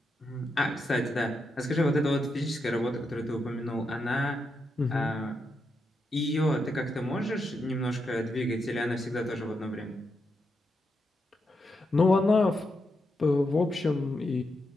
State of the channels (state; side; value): normal; both; correlation 0.84